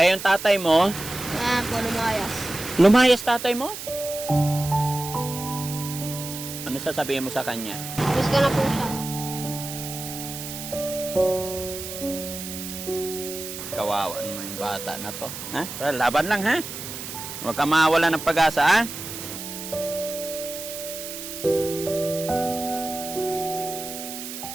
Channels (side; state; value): right; noise; hiss, 9 dB below the sound